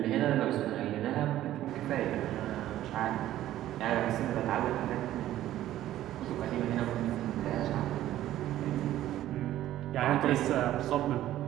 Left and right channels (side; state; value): left; quieter; 13.4 dB